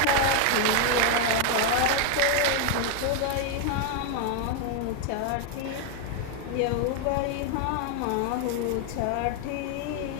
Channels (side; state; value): both; different; correlation 0.01